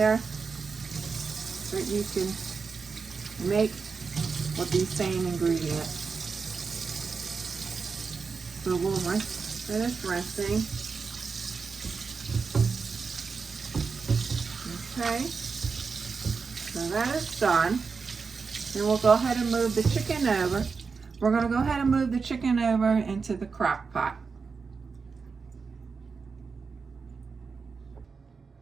that you can make with these same ingredients. So we'll finish rinsing. Okay, so that is done. And we'll go ahead and move the chicken over. We're going to go ahead and move the chicken over into the crock pot.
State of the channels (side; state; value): left; quieter; 5.1 dB